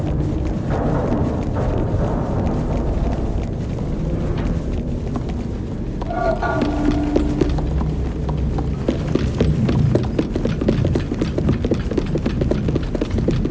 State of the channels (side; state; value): both; identical; correlation 1.00